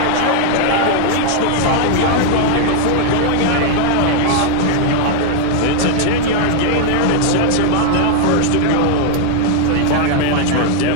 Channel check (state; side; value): different; both; correlation 0.00